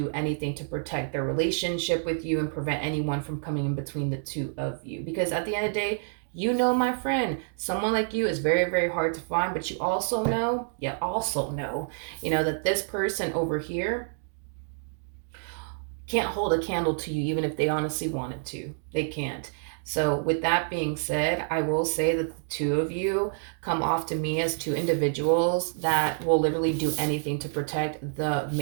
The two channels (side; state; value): left; silent; digital silence